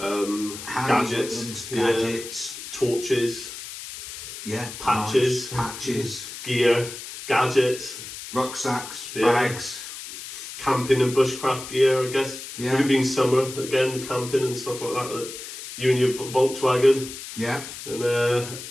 gadgets, torches, patches, gear, gadgets, rucksacks, bags, camping and bushcraft gear, I guess. Yeah. With it being summer, again, camping and stuff like that you and your Volkswagen. Yeah. And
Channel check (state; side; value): noise; left; hiss, 11 dB below the sound